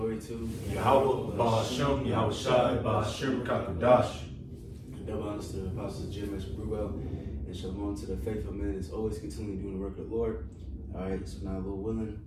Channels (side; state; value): both; identical; correlation 1.00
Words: to Yahweh, Ba'ashem, Yahweh Shai, Ba'ashem, Kakudash. Double honors to the apostles GMS Col and Shalom to the faithful men that's always continually doing the work of the Lord. All right, so now, Lord willing,